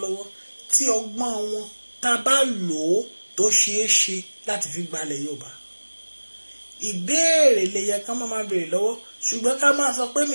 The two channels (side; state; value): both; inverted; correlation -1.00